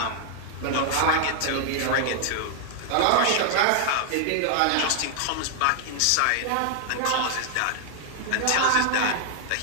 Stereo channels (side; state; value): both; different; correlation 0.00